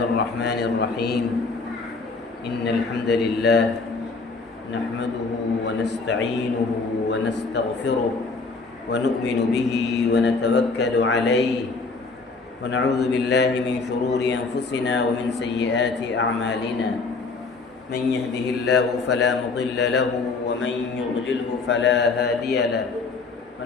الرحمن الرحيم. إن الحمد لله نحمده ونستعينه ونستغفره ونؤمن به ونتوكل عليه ونعوذ بالله من شرور أنفسنا ومن سيئات أعمالنا. من يهده الله فلا مضل له ومن يضلله فلا هادي له.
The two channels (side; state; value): right; quieter; 4.1 dB